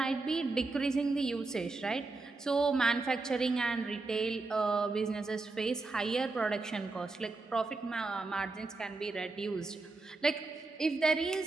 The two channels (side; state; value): left; quieter; 3.6 dB